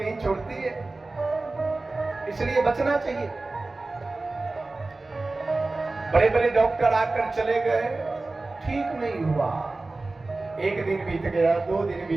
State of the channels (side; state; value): left; quieter; 3.3 dB